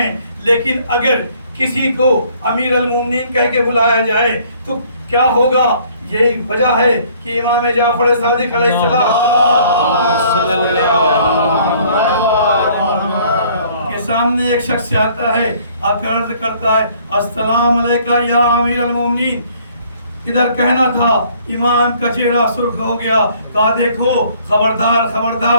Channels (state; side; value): inverted; both; correlation -0.59